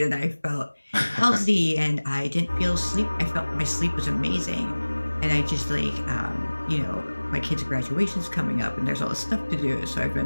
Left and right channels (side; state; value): both; inverted; correlation -1.00